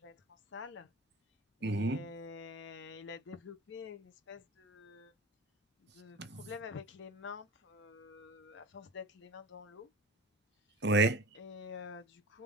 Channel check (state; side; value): normal; both; correlation 0.36